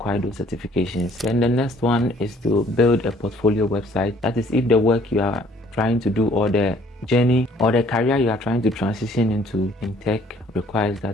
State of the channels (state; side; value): normal; both; correlation 0.59